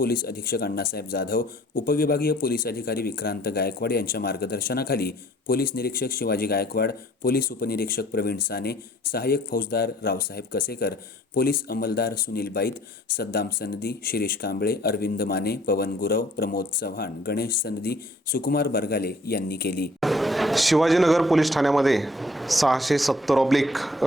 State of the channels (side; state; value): both; normal; correlation 0.57